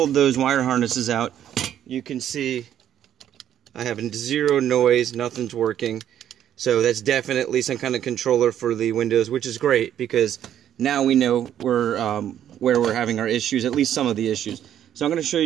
those wire harnesses out, you can see I have zero noise, nothing's working. So that's definitely some kind of controller for the windows, which is great because now we know where we're having our issues, at least some of the issues. So I'm going to show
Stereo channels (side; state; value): left; quieter; 10.6 dB